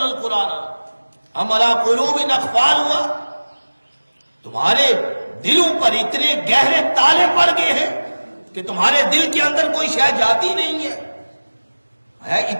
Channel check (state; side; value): inverted; both; correlation -1.00